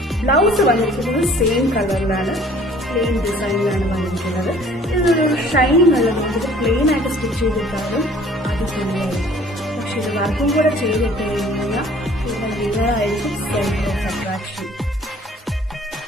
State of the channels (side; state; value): both; normal; correlation 0.53